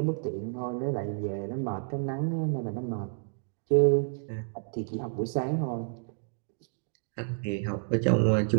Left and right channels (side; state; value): left; silent; digital silence